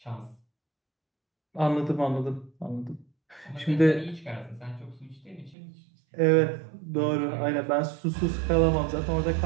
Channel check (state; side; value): drops out; left; at 5.6 s